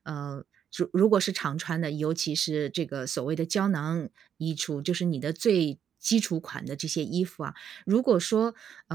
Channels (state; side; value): quieter; left; 8.6 dB